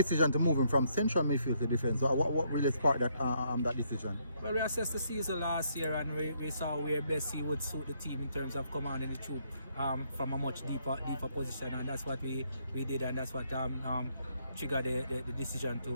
to move him from central midfield to defence, what really sparked that decision? Well, we assessed the season last year, and we saw where best he would suit the team in terms of commanding the troop from a much deeper position, and that's what we did, and that's what triggered the decision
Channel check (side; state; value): both; inverted; correlation -0.72